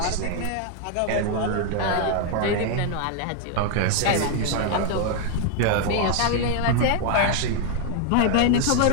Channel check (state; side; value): different; both; correlation 0.00